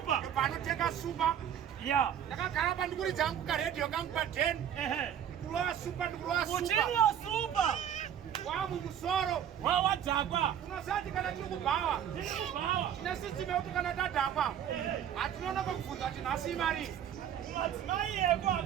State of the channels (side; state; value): left; quieter; 9.5 dB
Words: Panotenga super. Yeah. Ndakagara pandikuri dzangu ka radio kangu pa 10. Kulowa super ndikulowa super. Uchinwa super. Wamu musoro. Wawa dzakwa. Unosati kana tiri kubhawa. Tiri kubhawa. Tina system yekuti kana tadhakwa. Hatinoona pakubvunza kuti nhasi imari. Madzimai eko